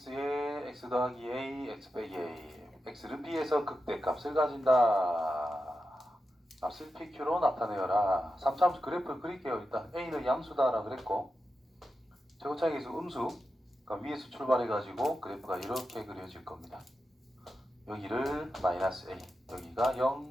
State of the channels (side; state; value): both; normal; correlation 0.90